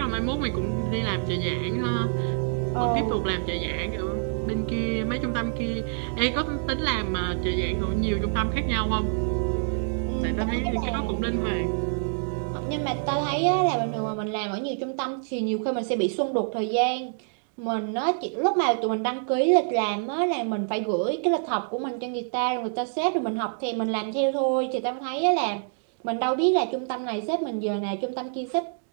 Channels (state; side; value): silent; left; 61 dB below the other